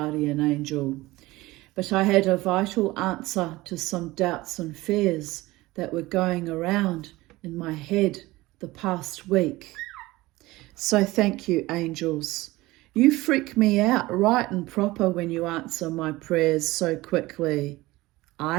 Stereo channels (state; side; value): quieter; left; 19.5 dB